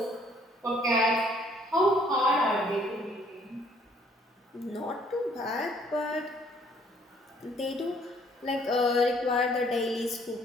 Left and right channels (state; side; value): normal; both; correlation 0.62